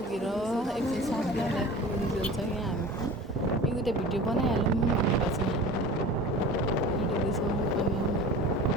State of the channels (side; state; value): both; normal; correlation 0.38